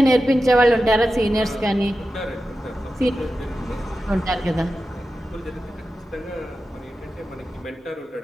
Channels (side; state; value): both; normal; correlation 0.92